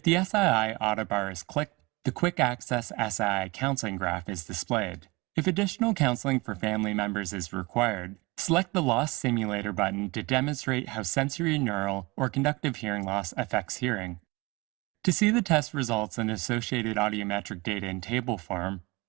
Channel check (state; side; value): quieter; left; 24.3 dB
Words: the SII autobar is clicked, the Quick Access SII counseling graph is displayed. If additional counseling for family members is required, select the Loss Simulator button to demonstrate how sensory neural or conductive hearing loss affects hearing. To see the test results and associated audiometric data in table form,